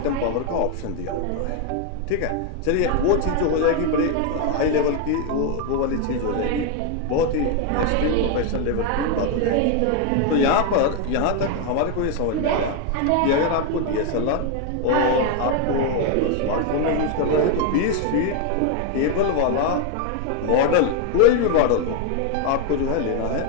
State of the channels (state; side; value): different; both; correlation 0.01